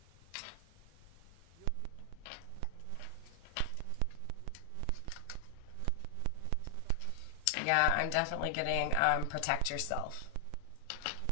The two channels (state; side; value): different; both; correlation 0.00